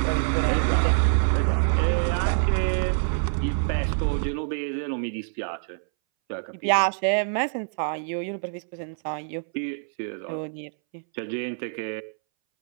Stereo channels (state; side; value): silent; left; 61 dB below the other